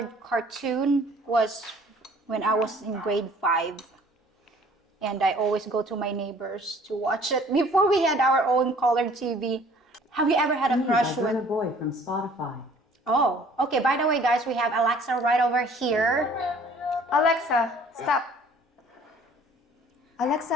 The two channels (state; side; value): normal; both; correlation 0.54